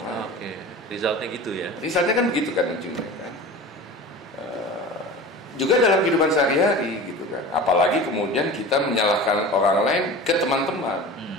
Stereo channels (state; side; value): normal; both; correlation 0.35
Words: lain. Oke. Resultnya gitu ya. Resultnya kan begitu kan ujungnya kan. Juga dalam kehidupan sehari-hari gitu kan. Apalagi kemudian kita menyalahkan orang lain ke teman-teman.